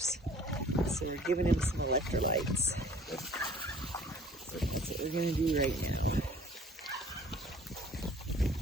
So we're giving him some electrolytes. So that's what we're going to do right now.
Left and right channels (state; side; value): normal; both; correlation 0.52